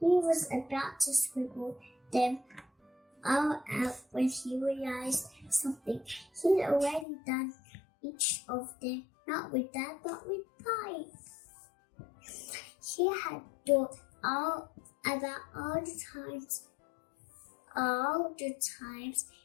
was about to scribble them all out when he realized something. He'd already done each of them, not with Dad, but with Bai. He had thought about all the times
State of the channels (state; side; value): drops out; right; at 7.1 s